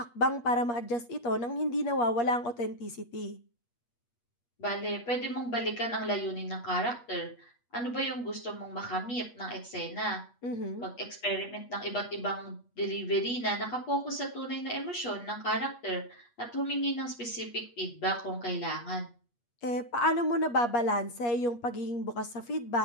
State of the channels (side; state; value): right; late; 8.4 ms